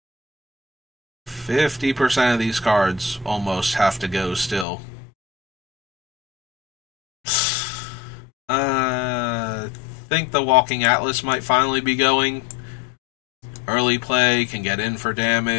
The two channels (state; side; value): drops out; right; at 4.7 s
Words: %50 of these cards almost have to go still. I think the Walking Atlas might finally be going. Early play can get in for